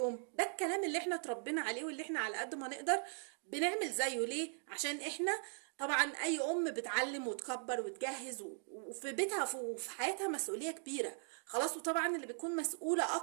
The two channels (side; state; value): left; silent; 51 dB below the other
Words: ده الكلام اللي احنا اتربينا عليه، واللي احنا على قد ما نقدر بنعمل زيه. ليه؟ عشان احنا طبعا اي ام بتعلم وتكبر وتجهز، وفي بيتها وفي حياتها مسؤوليه كبيره. خلاص، وطبعا اللي بتكون مسؤوله